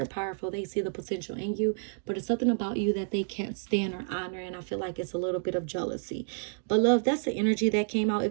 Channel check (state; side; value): silent; left; digital silence